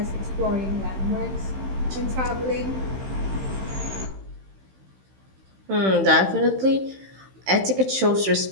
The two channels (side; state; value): left; late; 15 ms